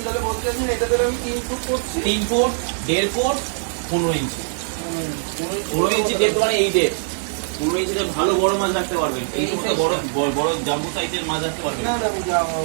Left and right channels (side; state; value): left; silent; digital silence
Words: তাহলে বলতে চাচ্ছেন এটা তাহলে আমি 3 ফুট করছি, 3 ফুট 1.5 ফুট 15 ইঞ্চি। 15 ইঞ্চি ডেপ মানে এই ডেপ। 15 ইঞ্চিতে ভালো বড় মাছ রাখতে পারবেন। এই সমস্ত বড় জাম্বো সাইজের মাছ রাখতে পারবেন। না